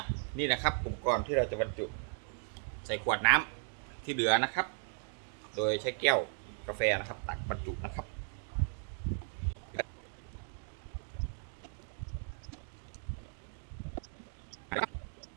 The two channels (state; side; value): silent; left; 54 dB below the other